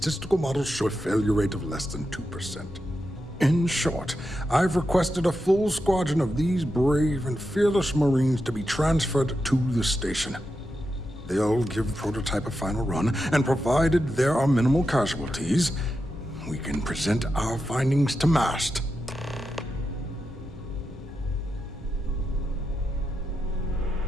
models show a failure rate of less than 2%. In short, I've requested a full squadron of these brave and fearless Marines to be transferred to the station. They'll give the prototype a final run, and provided there are minimal casualties, we can present our findings to MAST.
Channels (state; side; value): normal; both; correlation 0.88